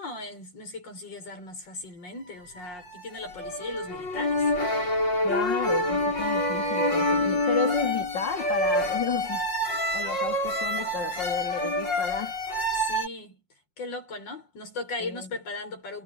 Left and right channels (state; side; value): late; right; 5.5 ms